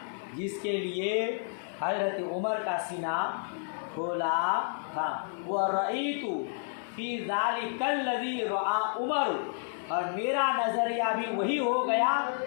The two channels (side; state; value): right; silent; digital silence